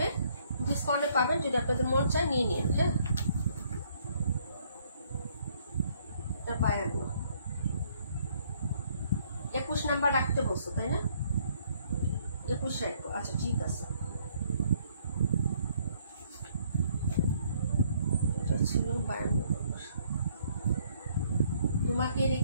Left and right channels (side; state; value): both; inverted; correlation -0.65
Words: ডিসকাউন্টে পাবেন, যদি আপনাদের মন চায় নিয়ে নিন। হ্যাঁ, এটা 52, 21 নাম্বার রাখতে বলছো তাই না? 21 রাখবো, আচ্ছা ঠিক আছে। এটা ছিল 52 নাম্বার। তোমাকে